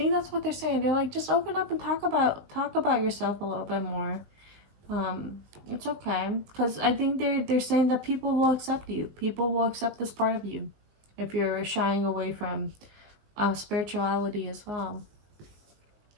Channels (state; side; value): late; left; 19 ms